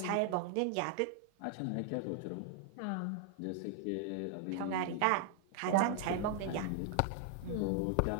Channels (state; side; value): different; both; correlation 0.00